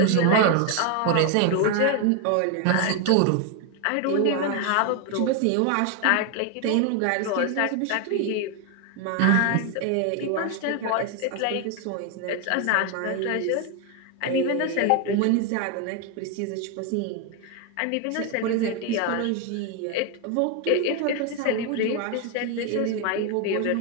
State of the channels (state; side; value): different; both; correlation 0.01